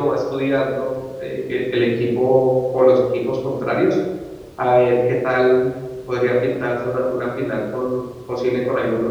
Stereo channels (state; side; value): identical; both; correlation 1.00